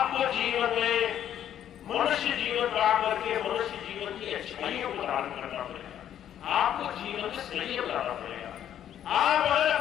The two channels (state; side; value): quieter; right; 10.4 dB